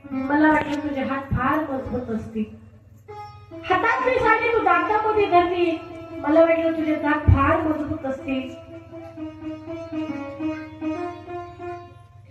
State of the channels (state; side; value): identical; both; correlation 1.00